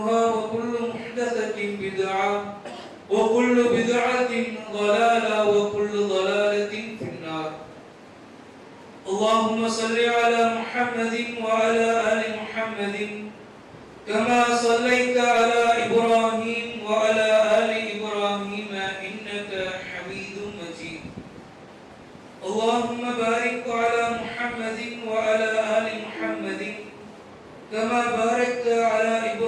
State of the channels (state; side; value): identical; both; correlation 1.00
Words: وكل محدثة بدعة وكل بدعة ضلالة وكل ضلالة في النار اللهم صل على محمد وعلى آل محمد كما صليت على إبراهيم وعلى آل إبراهيم إنك حميد مجيد اللهم بارك على محمد وعلى آل محمد كما باركت على